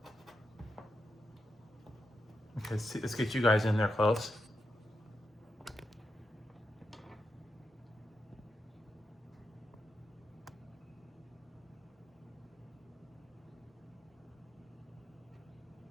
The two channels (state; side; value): normal; both; correlation 0.85